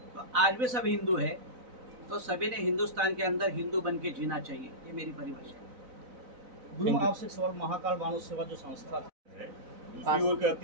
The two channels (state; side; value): late; left; 4.0 ms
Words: आज भी सब हिंदू है, तो सभी ने हिंदुस्तान के अंदर हिंदू बन के जीना चाहिए। ये मेरी परिभाषा है। गुरु, आपसे एक सवाल, महाकाल मानव सेवा जो संस्था है, दूसरी ओर